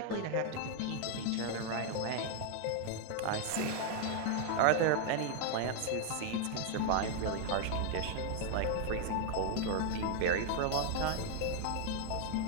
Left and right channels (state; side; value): different; both; correlation 0.00